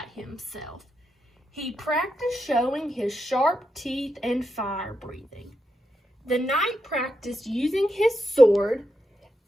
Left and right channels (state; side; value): normal; both; correlation 0.85